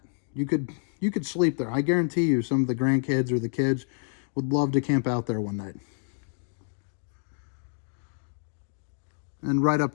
You could sleep there. I guarantee you some of the grandkids or the kids would love to camp out there one night. And right up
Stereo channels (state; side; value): silent; right; 59 dB below the other